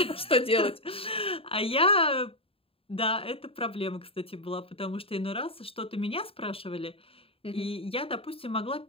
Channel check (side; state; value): right; late; 0.27 ms